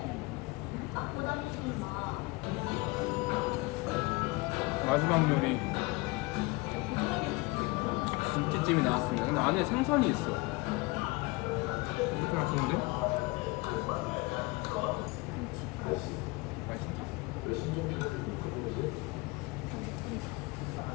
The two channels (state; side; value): quieter; right; 24.4 dB